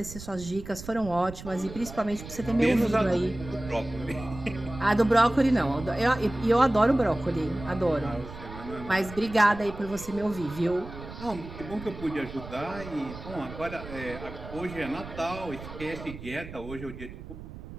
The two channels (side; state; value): right; noise; rumble, 13 dB below the sound